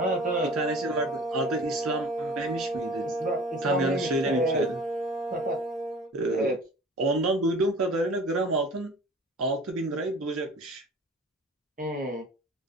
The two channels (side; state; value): both; normal; correlation 0.44